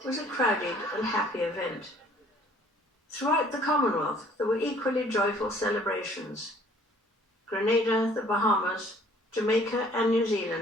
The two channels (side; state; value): both; normal; correlation 0.57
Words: was a crowded and happy event. Throughout the Commonwealth, there were equally joyful celebrations. Grenada, the Bahamas, Jamaica and New